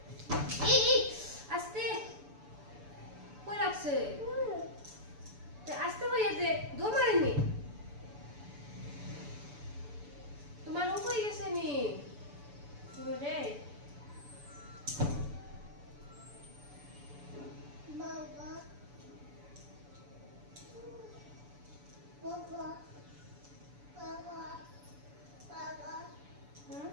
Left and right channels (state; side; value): late; left; 6.9 ms